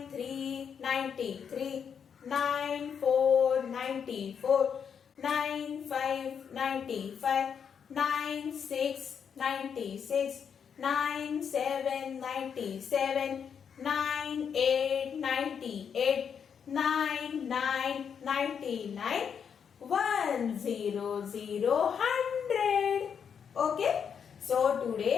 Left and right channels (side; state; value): right; quieter; 7.3 dB